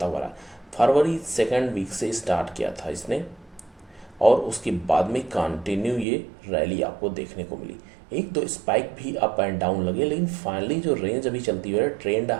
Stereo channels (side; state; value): left; drops out; at 6.1 s